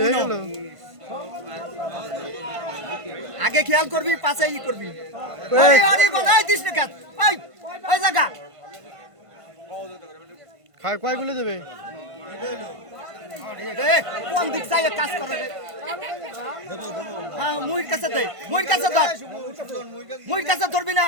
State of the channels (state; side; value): late; left; 1.5 ms